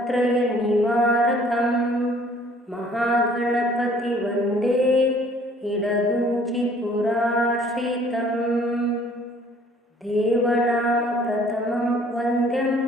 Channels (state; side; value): normal; both; correlation 0.57